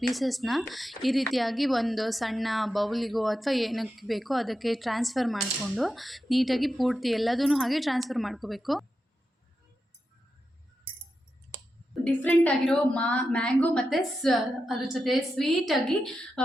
ಈ ರೀತಿಯಾಗಿ ಒಂದು ಸಣ್ಣ ಬೌಲಿಗೋ ಅಥವಾ ಏನಕ್ಕೆ ಬೇಕೋ ಅದಕ್ಕೆ ಟ್ರಾನ್ಸ್ಫರ್ ಮಾಡಿಕೊಂಡು ನೀಟಾಗಿ ಪೂರ್ತಿ ಎಲ್ಲದೂ ಹಾಗೆ ಟ್ರಾನ್ಸ್ಫರ್ ಮಾಡ್ಕೋಬೇಕು. ಡಿಫ್ರೆಂಟ್ ಆಗಿರೋ ಮ್ಯಾಂಗೋ ಮತ್ತು ಅದ್ರ ಜೊತೆ ಸ್ವೀಟಾಗಿ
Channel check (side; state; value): both; normal; correlation 0.89